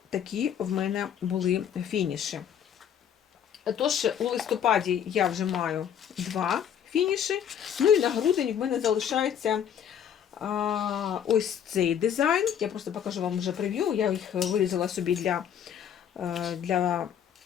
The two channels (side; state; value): right; quieter; 8.9 dB